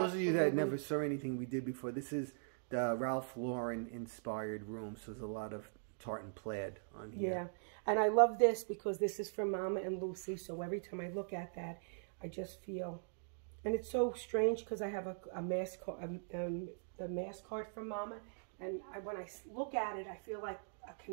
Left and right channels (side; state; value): left; silent; digital silence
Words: of you that never saw anything we did before, this is the Ralph Lauren inspired room. So there's a lot of tartan plaid on here. Yeah, and I love this because this is from Mama and Lucy. So every time I look at that, I just feel, and it's so strange because I have a mask card, the mask card from Mama. And when I look at it, I feel like a